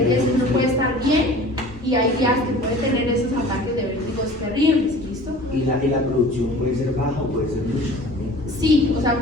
días que uno puede estar bien y hay días que puede tener esos ataques de vértigos terribles, ¿listo? Y la producción puede ser baja o puede ser mucha también. Sí, o sea,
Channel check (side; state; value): both; normal; correlation 0.44